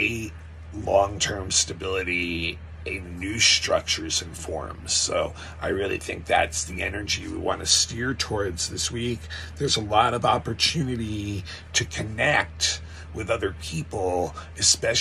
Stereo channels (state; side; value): identical; both; correlation 1.00